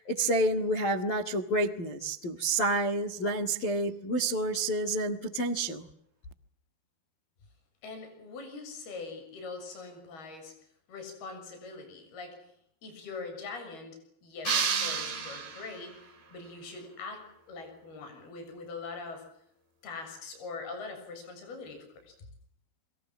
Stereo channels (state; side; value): late; right; 12 ms